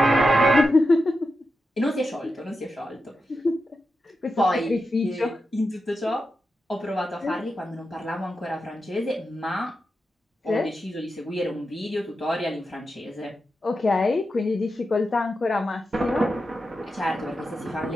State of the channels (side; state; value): both; normal; correlation 0.89